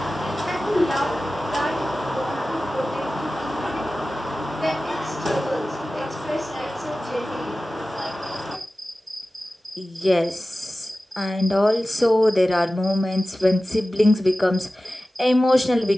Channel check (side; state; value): both; normal; correlation 0.96